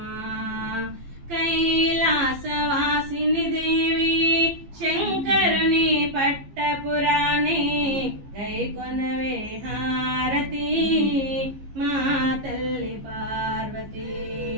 కైలాసవాసిని దేవి శంకరుని పట్టపురాణి గైకొనవే హారతి మా తల్లి పార్వతి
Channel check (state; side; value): late; left; 15 ms